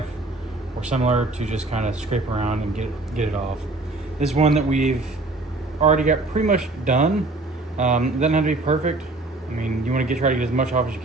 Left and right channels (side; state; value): left; quieter; 3.1 dB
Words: or similar to just kind of scrape around and get it off. This one that we've already got pretty much done. It doesn't have to be perfect. I mean, you want to try to get as much off as you